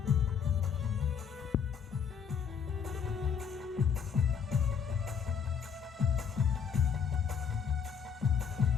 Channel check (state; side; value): quieter; right; 7.0 dB